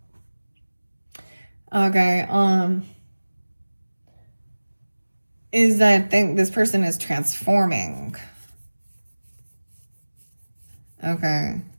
okay, is that this person is transforming. Okay.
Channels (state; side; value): inverted; both; correlation -1.00